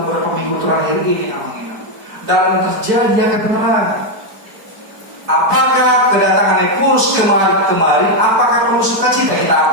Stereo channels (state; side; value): late; left; 4.5 ms